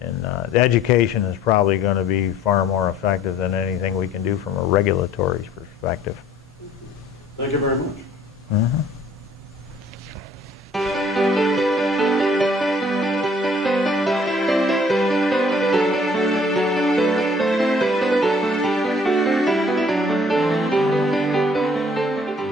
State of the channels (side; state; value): both; normal; correlation 0.57